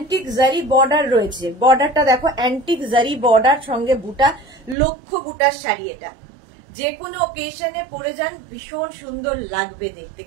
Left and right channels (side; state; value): left; drops out; at 4.8 s